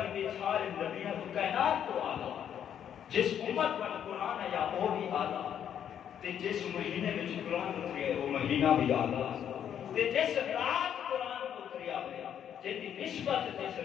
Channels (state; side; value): quieter; right; 9.3 dB